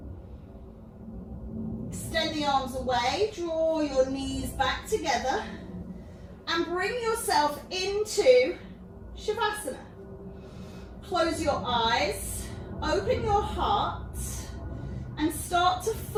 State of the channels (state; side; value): identical; both; correlation 1.00